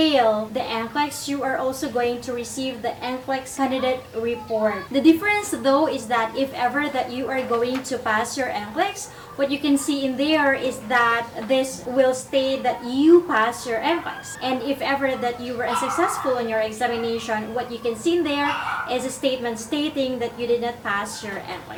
the NCLEX, you are also going to receive the NCLEX candidate report. The difference though is that if ever that you are going to pass your NCLEX, what you can see in there is that this will state that you pass your NCLEX. And if ever that you were unsuccessful in your examination, what you can see in there is a statement stating that you did not pass your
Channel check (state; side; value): identical; both; correlation 1.00